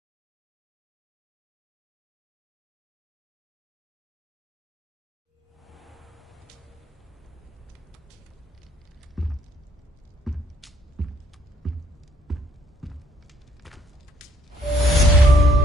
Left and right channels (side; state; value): both; normal; correlation 0.66